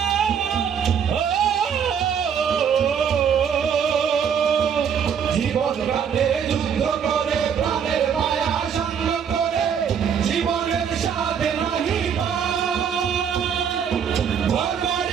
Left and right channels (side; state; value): left; quieter; 7.6 dB